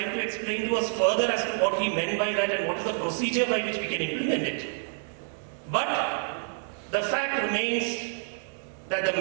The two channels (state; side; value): silent; left; 59 dB below the other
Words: to explain to us further as to what he meant by that and what is the procedure by which we can implement it. But the fact remains that